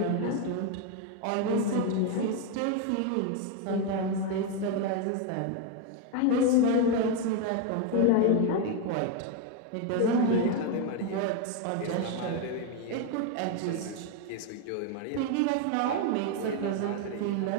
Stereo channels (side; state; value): both; different; correlation 0.01